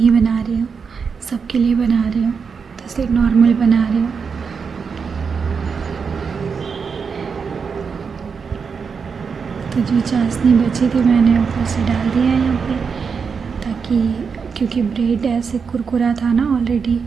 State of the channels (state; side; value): quieter; left; 5.8 dB